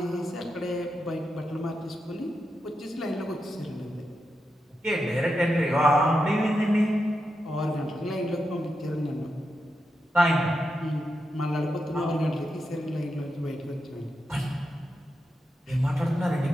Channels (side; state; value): both; normal; correlation 0.87